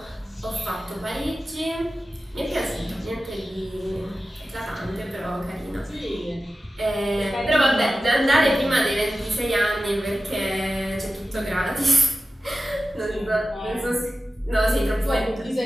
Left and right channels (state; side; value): normal; both; correlation 0.94